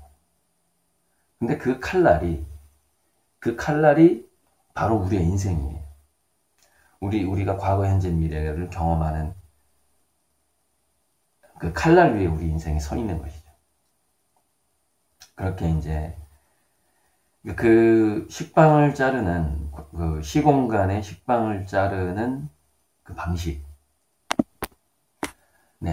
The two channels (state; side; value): identical; both; correlation 1.00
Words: 근데 그 칼날이 바로 우리의 인생이에요. 우리가 과거, 현재, 미래를 경험하는 그 칼날 위에 우리 인생이 서 있는 것이죠. 그렇게 이제 그 식빵을 자르는, 그 시공간의 식빵을 자르는 그 방식,